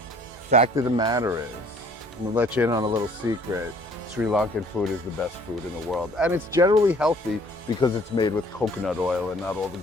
Fact of the matter is, I'm gonna let you in on a little secret. Sri Lankan food is the best food in the world. And it's generally healthy because it's made with coconut oil and not all the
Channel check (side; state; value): both; normal; correlation 0.57